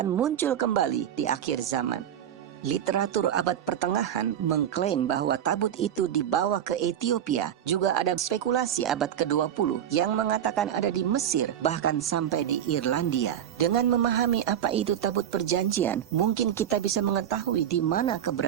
muncul kembali di akhir zaman. Literatur abad pertengahan mengklaim bahwa tabut itu dibawa ke Ethiopia. Juga ada spekulasi abad ke-20 yang mengatakan ada di Mesir, bahkan sampai di Irlandia. Dengan memahami apa itu tabut perjanjian, mungkin kita bisa mengetahui di mana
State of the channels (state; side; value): quieter; left; 10.1 dB